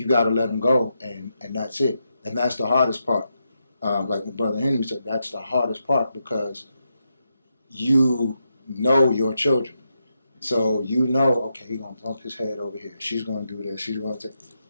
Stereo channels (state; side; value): inverted; both; correlation -0.85